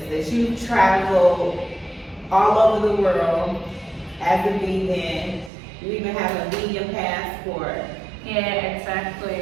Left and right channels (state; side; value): drops out; left; at 5.5 s